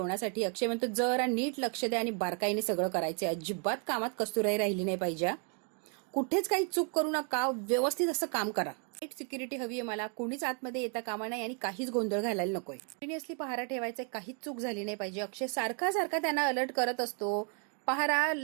अक्षय म्हणतो जरा नीट लक्ष द्या आणि बारकाईने सगळं करायचंय. अजिबात कामात कस्तुराई राहिली नाही पाहिजे. कुठेच काही चूक करू नका, व्यवस्थित असं काम करा. सिक्युरिटी हवी आहे मला. कोणीच आतमध्ये येता कामा नाही आणि काहीच गोंधळ घालायला नकोय. कंटिन्युअसली पहारा ठेवायचा, काहीच चूक झाली नाही पाहिजे. अक्षय सारखा त्यांना अलर्ट करत असतो. पहारा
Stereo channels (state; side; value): quieter; left; 39.3 dB